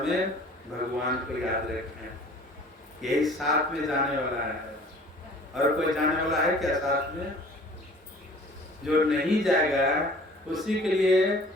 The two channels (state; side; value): normal; both; correlation 0.49